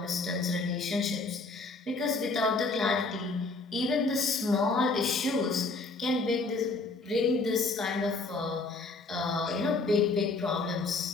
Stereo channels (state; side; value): quieter; right; 3.6 dB